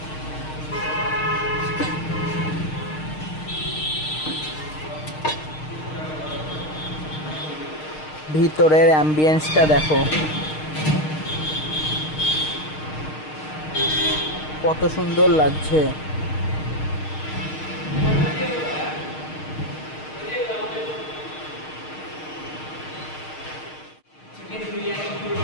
ভিতরের অ্যাম্বিয়েন্সটা দেখো কত সুন্দর লাগছে। Chicken biryani full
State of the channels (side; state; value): right; late; 6.5 ms